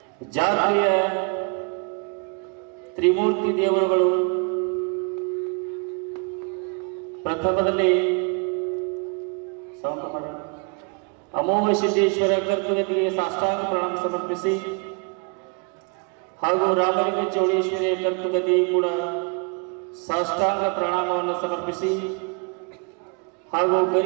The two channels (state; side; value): quieter; left; 35.0 dB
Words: ಜಾತ್ರೆಯ ತ್ರಿಮೂರ್ತಿ ದೇವರುಗಳು ಪ್ರಥಮದಲ್ಲಿ ಅಮೋಘ ಸಿದ್ದೇಶ್ವರ ಕರ್ತುಗತಿಗೆ ಸಾಷ್ಟಾಂಗ ಪ್ರಣಾಮ ಸಮರ್ಪಿಸಿ ಹಾಗೂ ರಾಮಲಿಂಗ ಚೌಡೇಶ್ವರಿಯ ಕರ್ತುಗತಿ ಕೂಡ ಸಾಷ್ಟಾಂಗ ಪ್ರಣಾಮವನ್ನು ಸಮರ್ಪಿಸಿ ಹಾಗೂ